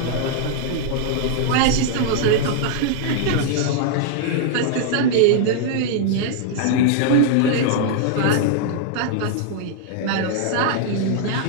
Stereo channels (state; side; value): different; both; correlation -0.01